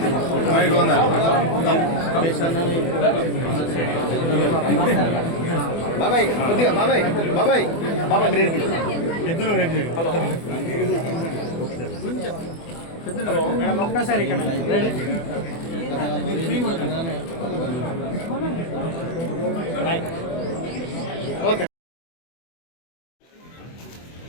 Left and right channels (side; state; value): right; late; 24 ms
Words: బాబాయ్ కొద్దిగా బాబాయ్ బాబాయ్ బాబాయ్ మీరు ఇద్దరు ఒక్కసారి ఇక్కడ ఓకే